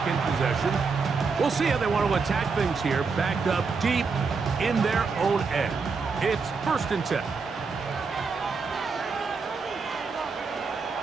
possession. We'll see how they want to attack things here, backed up deep in their own end. It's 1st and 10.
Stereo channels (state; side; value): quieter; left; 4.9 dB